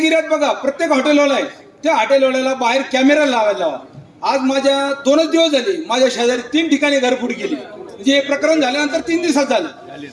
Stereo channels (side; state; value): both; identical; correlation 1.00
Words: एरियात बघा, प्रत्येक हॉटेलवाला आहे, त्या हॉटेलवाल्याला बाहेर कॅमेरा लावायला लावा. आज माझ्या 2च दिवस झाले, माझ्या शेजारी 3 ठिकाणी घरफोड केली. म्हणजे हे प्रकरण झाल्यानंतर 3 दिवसात झालं.